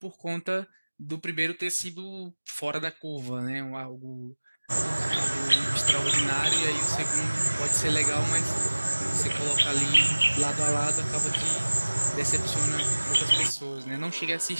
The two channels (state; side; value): inverted; both; correlation -1.00